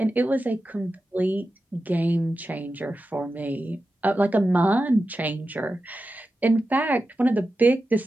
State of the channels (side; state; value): both; normal; correlation 0.92